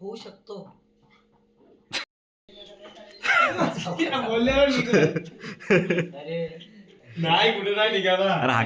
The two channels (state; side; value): identical; both; correlation 1.00